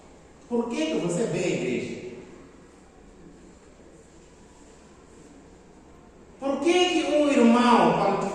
por que você vem à igreja? Por que um irmão, quando te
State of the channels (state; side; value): identical; both; correlation 1.00